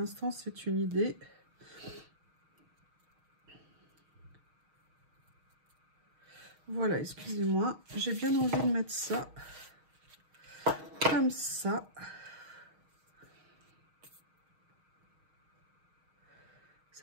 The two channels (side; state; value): left; late; 6.4 ms